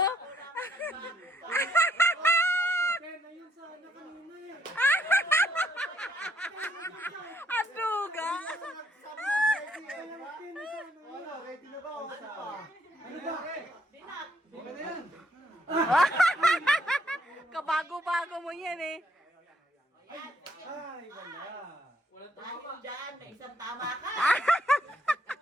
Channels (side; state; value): both; normal; correlation 0.70